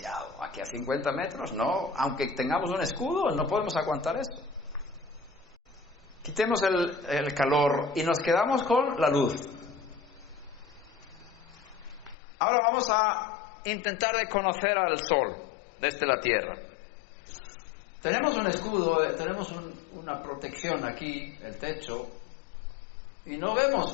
Aquí a 50 metros, no, aunque tengamos un escudo, no podemos aguantar eso. Quitemos el calor y nos quedamos con la luz. Ahora vamos a intentar de conocer al sol desde la tierra. Tenemos un escudo, tenemos una protección aquí, el techo, y no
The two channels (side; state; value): right; drops out; at 12.2 s